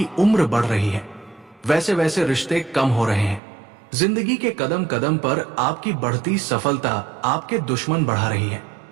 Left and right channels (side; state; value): left; drops out; at 3.4 s